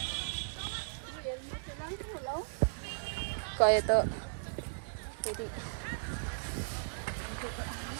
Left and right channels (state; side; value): silent; left; digital silence